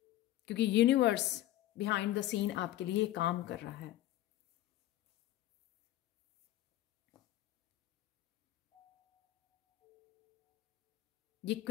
क्योंकि यूनिवर्स बिहाइंड द सीन आपके लिए काम कर रहा है। ये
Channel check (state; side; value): quieter; right; 14.6 dB